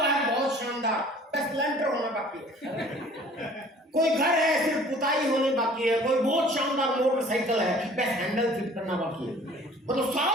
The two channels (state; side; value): normal; both; correlation 0.51